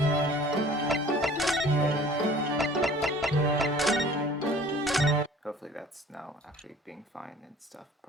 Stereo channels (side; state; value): both; normal; correlation 0.49